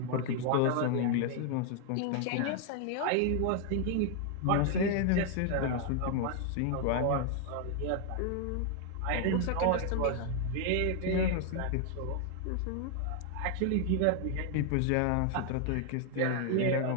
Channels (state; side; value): different; both; correlation 0.00